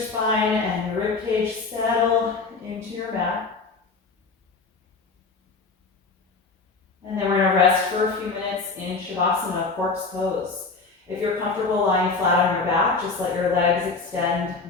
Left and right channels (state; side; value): quieter; right; 4.2 dB